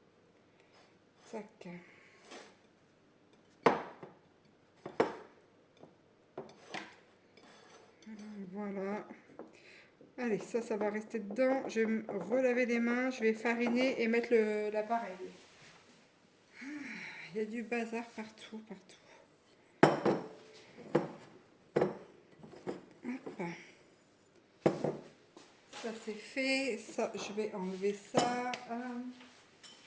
Tac. Voilà. Allez, ça va rester dedans. Je vais me relaver les mains, je vais fariner et mettre l'appareil. Il y a du bazar partout. Hop. Ça c'est fait. Ça, je vais enlever ça.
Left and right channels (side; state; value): both; identical; correlation 1.00